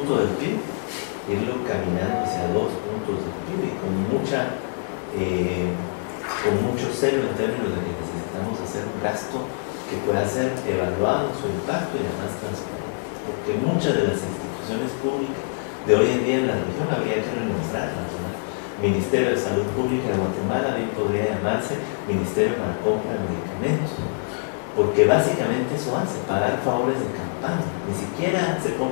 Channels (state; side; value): silent; right; digital silence